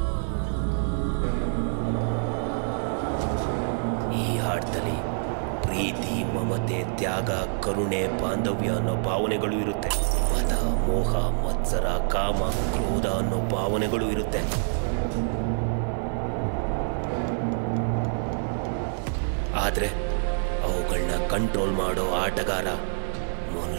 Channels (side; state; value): left; silent; 56 dB below the other